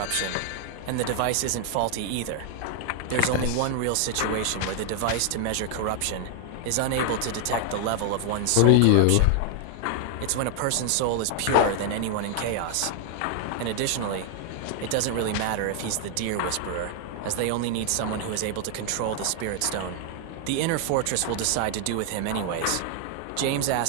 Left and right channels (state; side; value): different; both; correlation 0.00